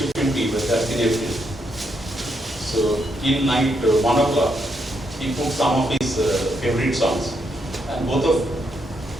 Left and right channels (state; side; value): normal; both; correlation 0.78